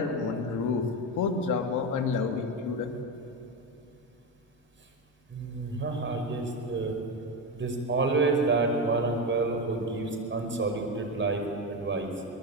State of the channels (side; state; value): both; normal; correlation 0.15